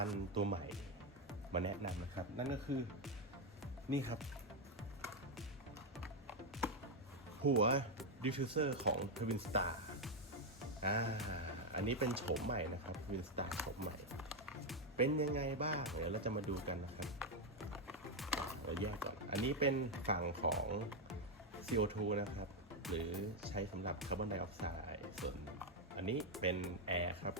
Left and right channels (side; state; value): both; normal; correlation 0.04